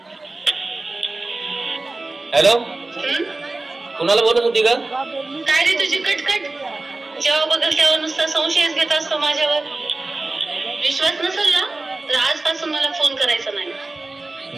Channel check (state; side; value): quieter; left; 3.1 dB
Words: हॅलो, कुणाला बोलत होती का? काय रे तुझी कटकट? जेव्हा बघल तेव्हा नुसता संशयच घेत असतो माझ्यावर. विश्वास नसेल ना तर आजपासून मला फोन करायचा